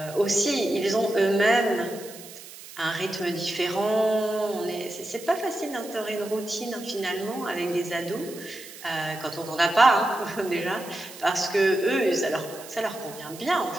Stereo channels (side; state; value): right; noise; hiss, 16 dB below the sound